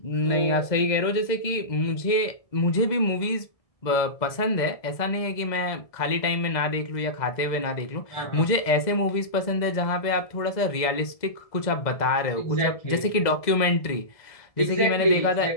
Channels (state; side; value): late; right; 1.7 ms